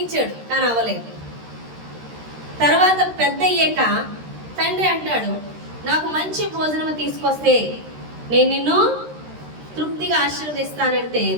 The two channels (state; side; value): late; left; 13 ms